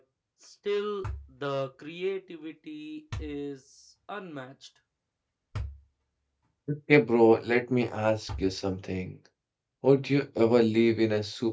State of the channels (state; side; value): identical; both; correlation 1.00